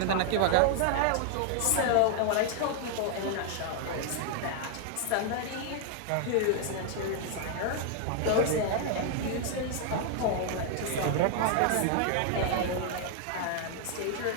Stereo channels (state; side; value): different; both; correlation 0.00